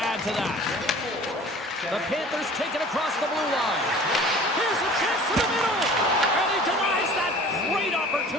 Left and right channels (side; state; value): both; normal; correlation 0.45